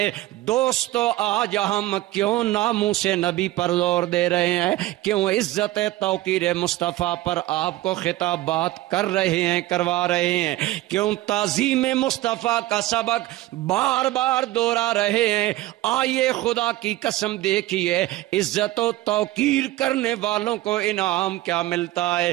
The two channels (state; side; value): quieter; left; 16.7 dB